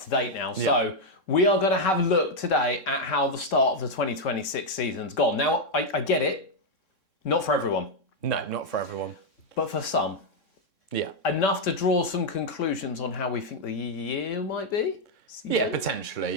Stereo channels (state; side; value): late; right; 3.6 ms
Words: to date now. So we are going to have a look today at how the start of the 2026 season's gone. Now, I get it. Not for everyone. No, not for everyone. But for some. Yeah. Enough to draw some conclusions on how we think the year might be? Yeah,